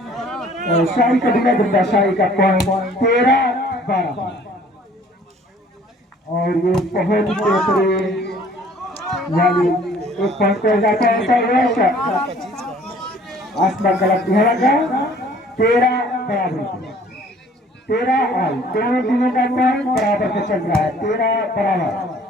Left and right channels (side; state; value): both; normal; correlation 0.55